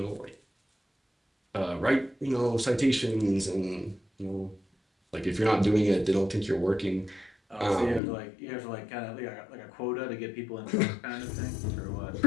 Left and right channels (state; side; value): drops out; right; at 8.0 s